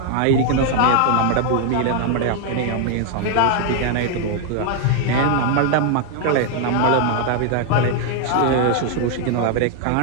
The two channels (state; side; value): different; both; correlation 0.00